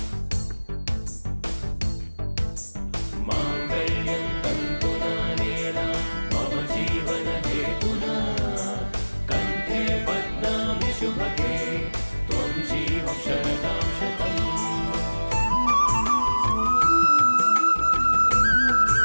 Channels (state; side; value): inverted; both; correlation -1.00